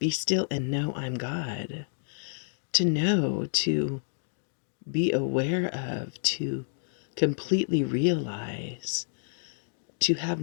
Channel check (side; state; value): right; silent; digital silence